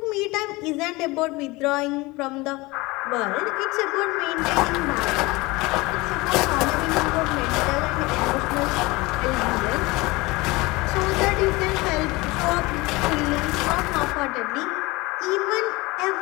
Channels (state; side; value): quieter; right; 22.6 dB